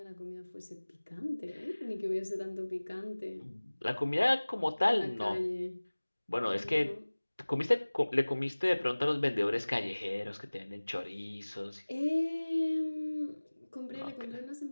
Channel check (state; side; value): inverted; both; correlation -1.00